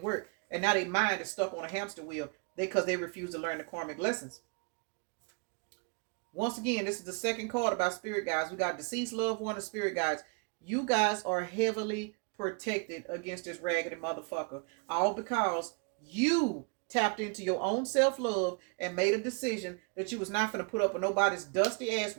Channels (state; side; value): quieter; left; 35.8 dB